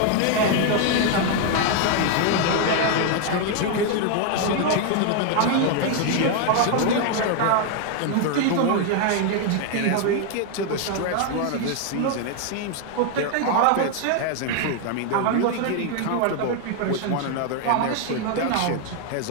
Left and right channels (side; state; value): both; different; correlation 0.00